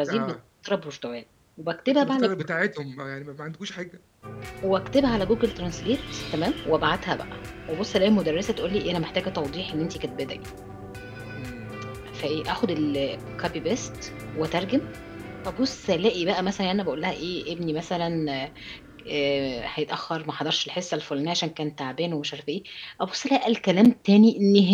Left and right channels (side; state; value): both; identical; correlation 1.00